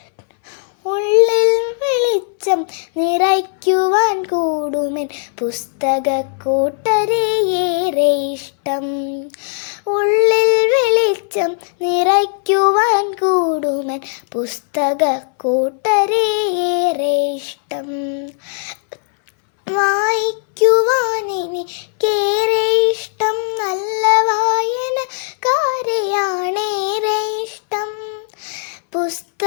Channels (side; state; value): right; silent; 65 dB below the other